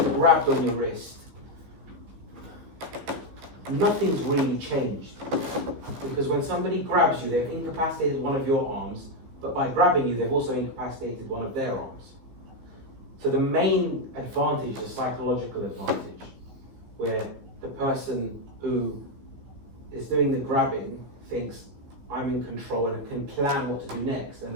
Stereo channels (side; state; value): left; late; 15 ms